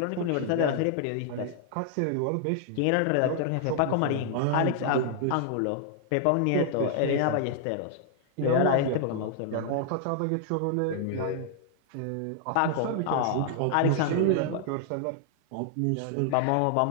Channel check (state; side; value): different; both; correlation -0.01